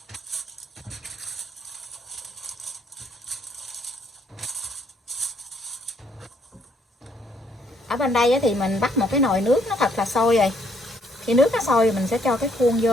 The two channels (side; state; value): both; normal; correlation 0.68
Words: Ở bên đây thì mình bắt một cái nồi nước nó thật là sôi rồi. Khi nước nó sôi mình sẽ cho cái khuôn